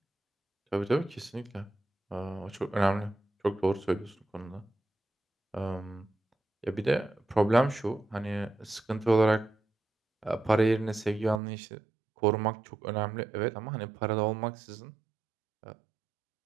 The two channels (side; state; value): left; drops out; at 11.4 s